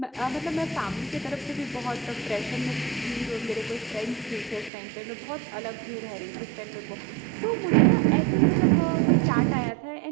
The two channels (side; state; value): left; drops out; at 4.7 s